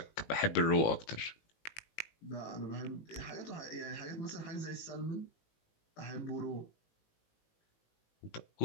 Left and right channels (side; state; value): right; late; 18 ms